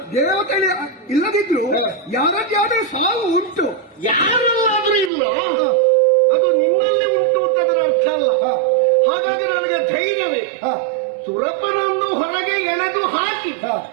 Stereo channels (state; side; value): drops out; left; at 5.1 s